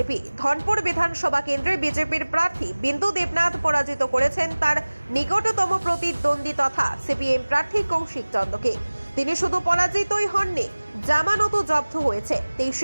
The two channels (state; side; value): inverted; both; correlation -1.00